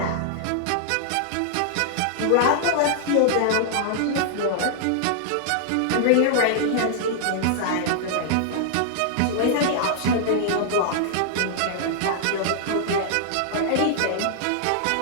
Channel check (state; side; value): different; both; correlation -0.01